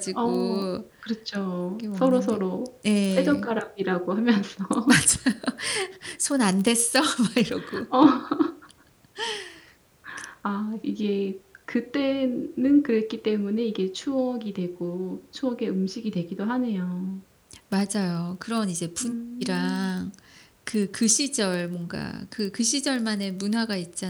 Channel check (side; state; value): both; identical; correlation 1.00